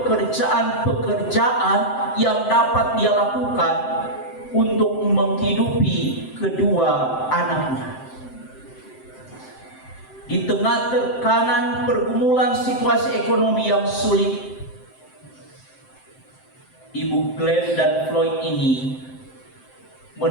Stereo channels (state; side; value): late; right; 7.7 ms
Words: yang dapat dia lakukan untuk menghidupi kedua anaknya. Di tengah tekanan pergumulan situasi ekonomi yang sulit, Ibu Glenn dan Floyd ini